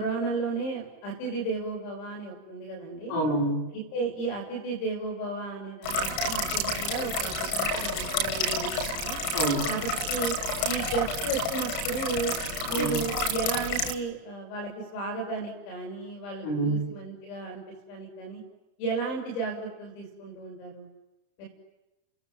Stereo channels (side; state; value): right; late; 31 ms